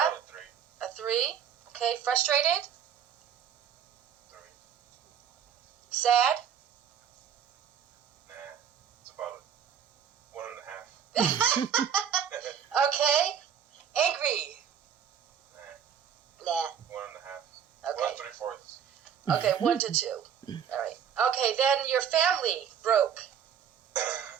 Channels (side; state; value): left; quieter; 8.4 dB